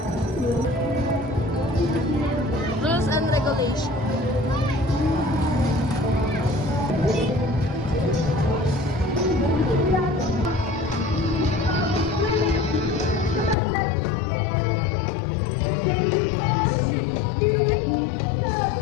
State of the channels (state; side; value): drops out; right; at 13.6 s